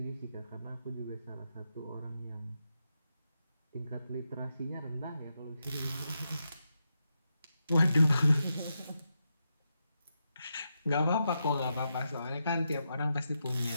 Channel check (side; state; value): both; inverted; correlation -0.85